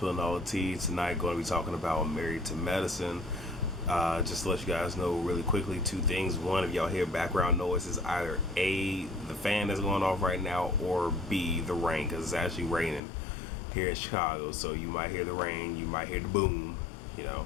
All the Tea. Tonight, going to be talking about Married to Medicine. Just to let you guys know really quickly, two things. One, if y'all hear background noise, is either A, the fan that's going off right now, or B, the rain, because it's actually raining here in Chicago. So you might hear the rain, you might hear the boom, you know.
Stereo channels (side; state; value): right; drops out; at 13.0 s